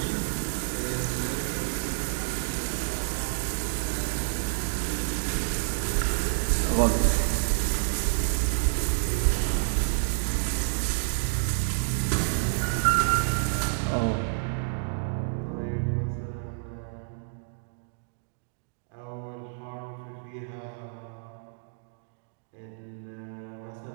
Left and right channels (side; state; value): left; silent; digital silence